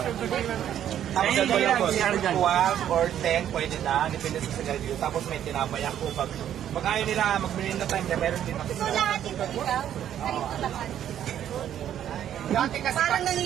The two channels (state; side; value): quieter; left; 10.5 dB